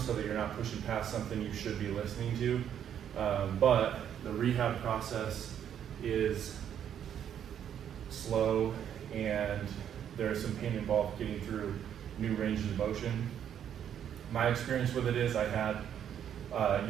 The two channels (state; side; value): quieter; left; 9.3 dB